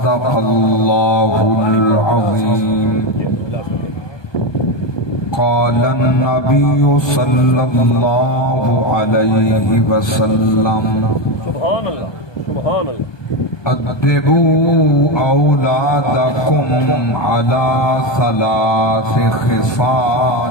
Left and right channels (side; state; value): right; late; 1.2 ms